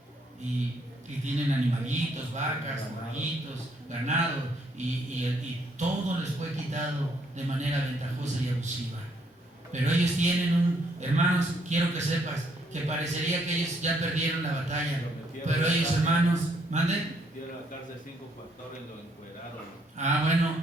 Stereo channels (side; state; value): both; normal; correlation 0.70